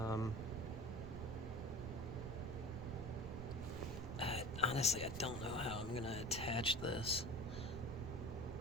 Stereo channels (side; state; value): right; noise; rumble, 6 dB below the sound